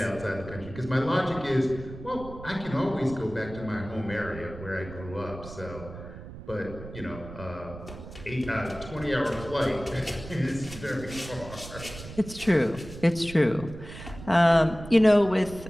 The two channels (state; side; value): noise; right; rumble, 13 dB below the sound